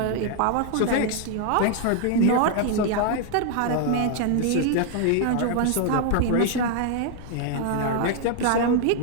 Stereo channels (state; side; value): different; both; correlation 0.00